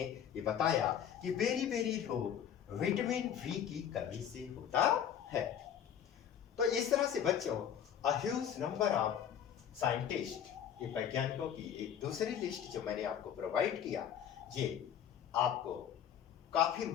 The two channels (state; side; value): quieter; right; 9.2 dB